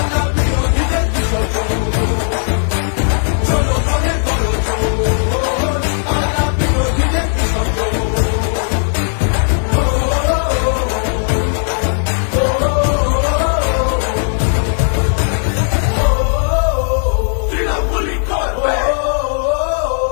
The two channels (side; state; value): right; silent; digital silence